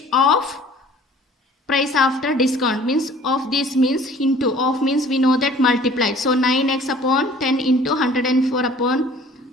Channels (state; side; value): normal; both; correlation 0.51